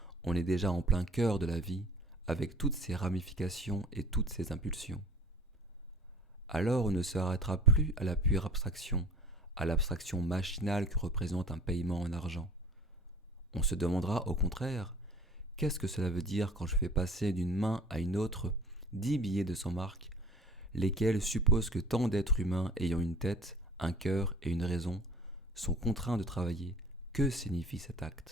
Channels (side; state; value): both; normal; correlation 0.46